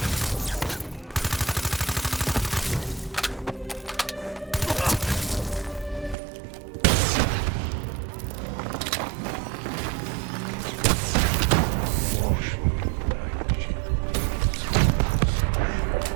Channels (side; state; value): left; drops out; at 6.2 s